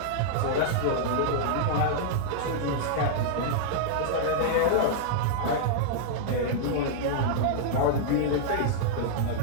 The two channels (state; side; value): different; both; correlation -0.02